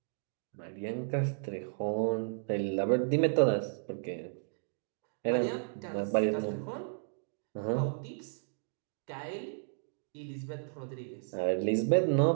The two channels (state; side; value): silent; left; digital silence